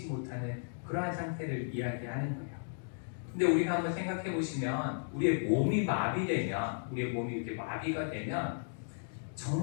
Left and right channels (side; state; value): right; silent; digital silence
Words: 못하는 그러한 상태를 이야기하는 거예요. 근데 우리가 한번 생각해 보시면 우리의 몸이 마비되면 우리의 몸이 이렇게 마비가 되면